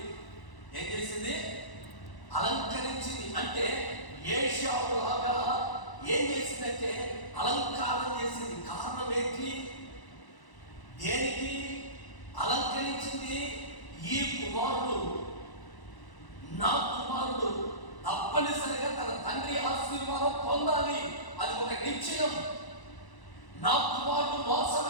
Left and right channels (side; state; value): right; late; 1.0 ms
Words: ఏం చేసింది? అలంకరించింది. అంటే ఏశావులాగా ఏం చేసిందంటే అలంకారం చేసింది. కారణం ఏంటి? దేనికి అలంకరించింది? ఈ కుమారుడు, నా కుమారుడు తప్పనిసరిగా తన తండ్రి ఆశీర్వాదం పొందాలి, అది ఒక నిశ్చయం. నా కుమారుడు